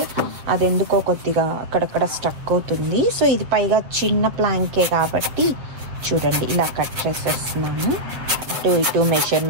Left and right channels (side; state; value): left; late; 7.6 ms